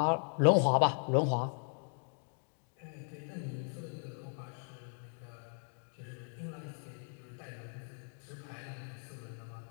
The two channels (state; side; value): silent; right; 53 dB below the other